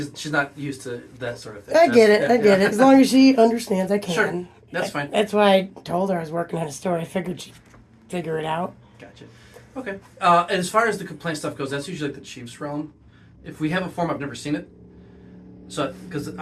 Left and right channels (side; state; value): both; identical; correlation 1.00